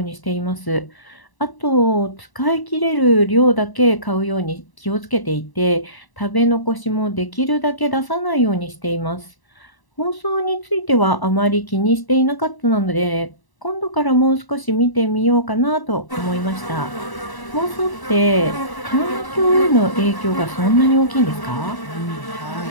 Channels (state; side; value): late; right; 1.0 ms